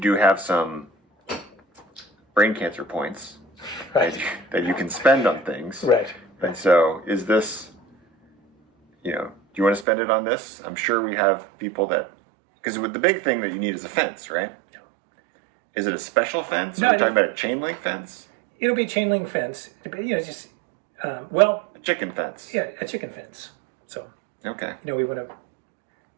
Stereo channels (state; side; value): drops out; left; at 9.9 s